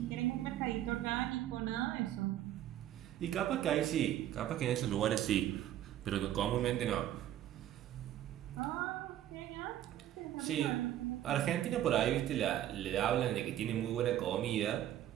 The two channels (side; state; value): left; quieter; 12.2 dB